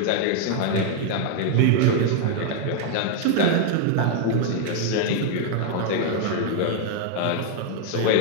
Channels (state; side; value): different; both; correlation 0.00